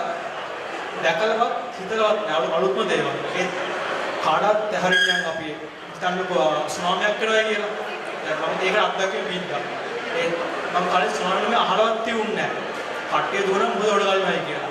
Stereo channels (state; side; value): identical; both; correlation 1.00